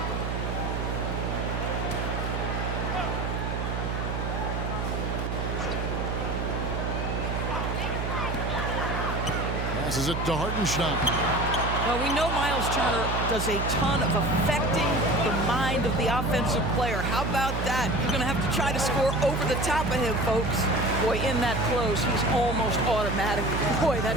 Passes it to Hartenstein. Well, we know Miles Turner does a ton of affecting the mind of the offensive player. How about that? You're going to have to try to score over the top of him, folks. Boy, in that close, he's almost automatic. Boy,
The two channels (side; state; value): right; noise; hum, 2 dB below the sound